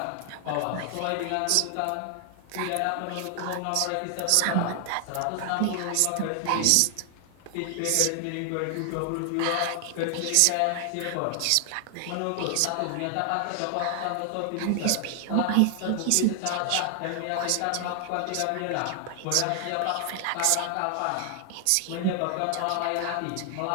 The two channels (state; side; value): different; both; correlation 0.00